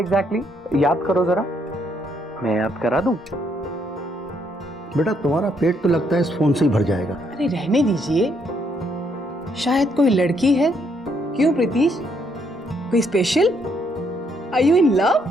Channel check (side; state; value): both; normal; correlation 0.73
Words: याद करो जरा। मैं याद करा दूं? बेटा तुम्हारा पेट तो लगता है इस फोन से ही भर जाएगा। अरे रहने दीजिए, शायद कोई लड़की है। क्यों प्रीतिश, कोई special? Are you in love?